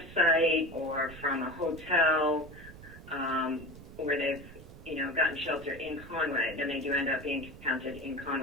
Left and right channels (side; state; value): right; noise; rumble, 16 dB below the sound